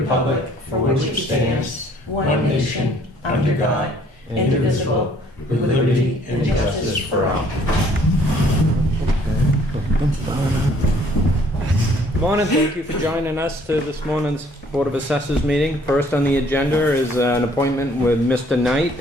for which it stands, one nation, under God, indivisible, with liberty and justice for all. Good morning. Thank you for joining us to this morning's Board of Assessors meeting. First on the agenda is an appointment with Mr. Knight.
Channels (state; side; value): normal; both; correlation 0.60